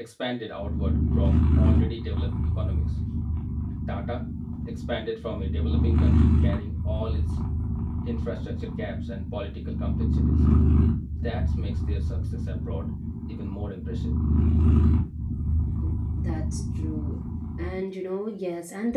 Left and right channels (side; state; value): both; identical; correlation 1.00